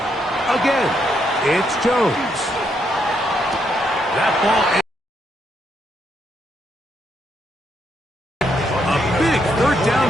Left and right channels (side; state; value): both; normal; correlation 0.77